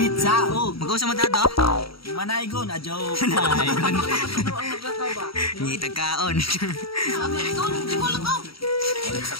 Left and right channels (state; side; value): late; right; 0.75 ms